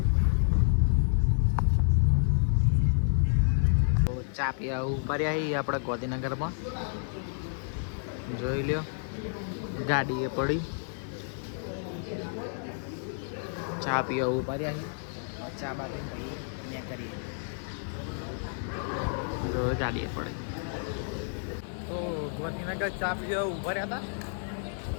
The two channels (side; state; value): right; silent; digital silence